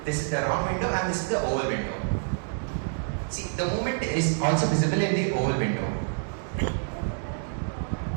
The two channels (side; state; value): left; silent; digital silence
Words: This is the round window, and this is the oval window. See, the movement is also visible in the oval window.